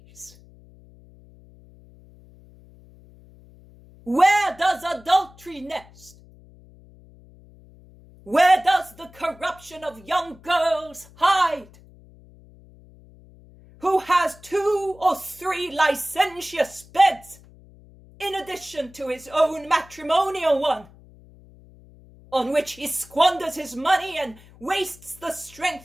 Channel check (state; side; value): noise; left; hum, 24 dB below the sound